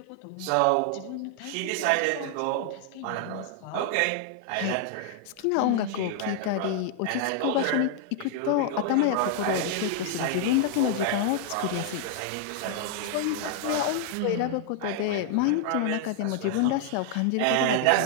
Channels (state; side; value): different; both; correlation 0.00